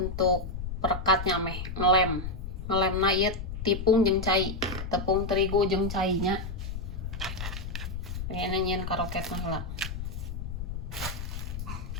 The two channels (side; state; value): left; noise; rumble, 6 dB below the sound